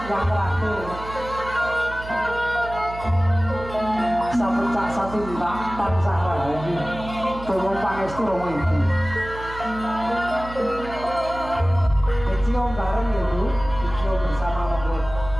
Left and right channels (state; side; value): noise; right; hum, 12 dB below the sound